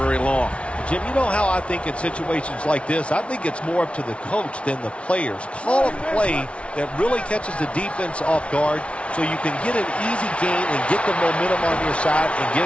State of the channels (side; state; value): right; late; 0.061 ms